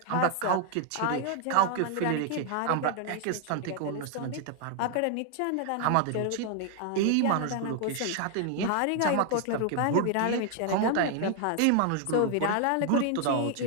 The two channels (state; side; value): different; both; correlation 0.00